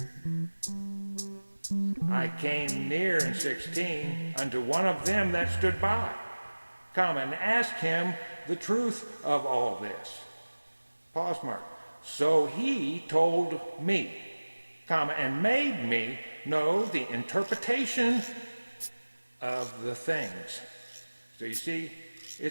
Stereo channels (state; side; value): inverted; both; correlation -1.00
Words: I came near in 16 unto one of them that stood by, comma, and asked him the truth of all this. Pause mark. So he told me, comma, and made me know the interpretation of the things. So you see,